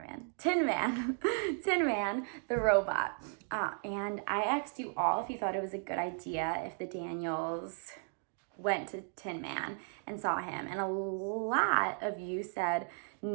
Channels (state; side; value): silent; left; 54 dB below the other